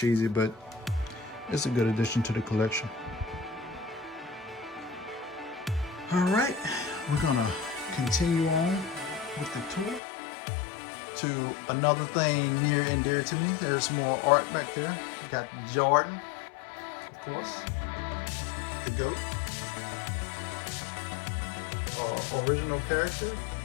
but it's a good addition to the collection. All right, we're gonna continue on with the tour to another thing near and dear to me. There's more art back there. You got Jordan, of course, the GOAT, original character,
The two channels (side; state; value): right; drops out; at 10.0 s